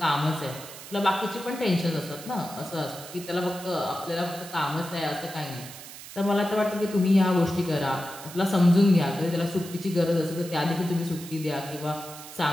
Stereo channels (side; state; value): right; noise; hiss, 14 dB below the sound